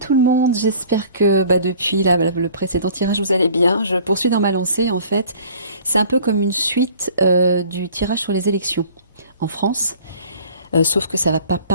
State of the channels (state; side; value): inverted; both; correlation -0.50